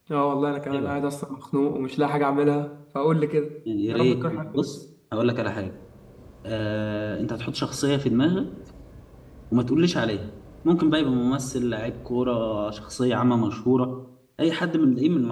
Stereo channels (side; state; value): both; identical; correlation 1.00